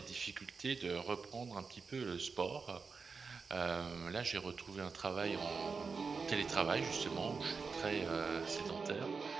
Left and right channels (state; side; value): quieter; left; 4.9 dB